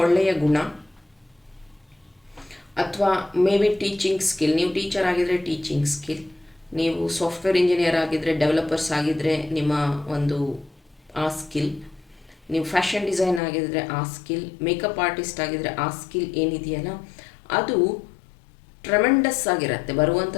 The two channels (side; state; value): right; drops out; at 13.4 s